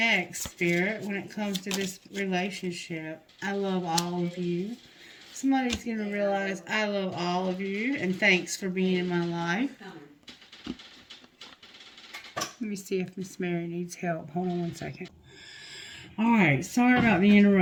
Spirit, when it comes to this relationship? I love all of you. Somebody's going to realize I love all of you, and thanks for being in my life. Let me see if Miss Mary needs help. Hold on one second. Alright, sorry about the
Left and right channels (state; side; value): identical; both; correlation 1.00